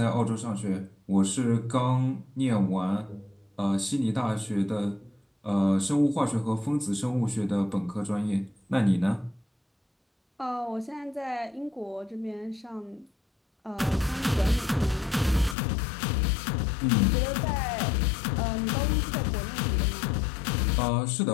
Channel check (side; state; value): right; drops out; at 15.6 s